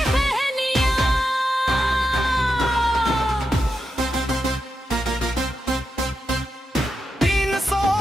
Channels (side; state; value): both; normal; correlation 0.87